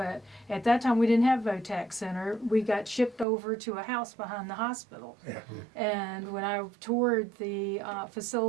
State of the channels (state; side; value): drops out; left; at 3.2 s